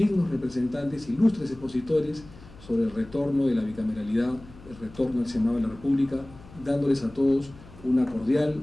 representantes, ilustres expositores, sobre el retorno de la bicameralidad, el retorno al Senado de la República, dándoles a todos una cordial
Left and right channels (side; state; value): left; noise; hum, 20 dB below the sound